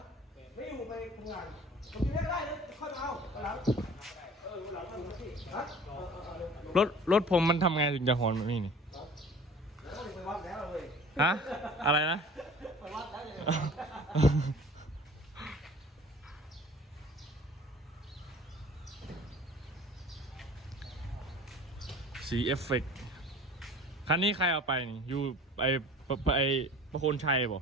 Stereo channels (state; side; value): normal; both; correlation 0.45